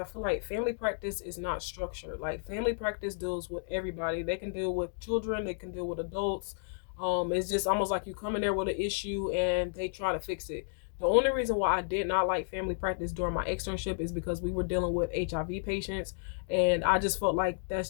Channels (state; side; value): silent; right; digital silence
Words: feel like family practice is not structured. Like family practice deals with everybody. They can deal with children, they can deal with adults. It's just almost like you come in there with an issue and they try to fix it. The only reason why I did not like family practice during my externship is because we were dealing with HIV patients, and I just felt like that's